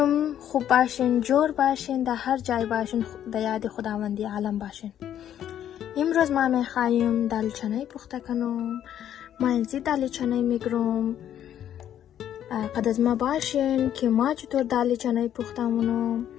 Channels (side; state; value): right; quieter; 10.5 dB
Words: خوب باشین، جور باشین، در هر جای باشین، در یاد خداوندی عالم باشین. امروز ما میخوایم دالچنه پخته کنم. ما اینجا دالچنه میگیرم. قد از ما باشین که ما چطور دالچنه پخته منم.